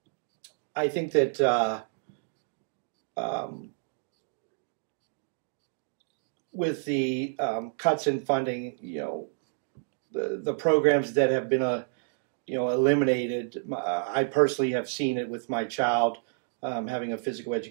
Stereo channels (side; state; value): left; silent; digital silence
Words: I think that with the cuts in funding, the programs that have been eliminated. I personally have seen it with my child having a physical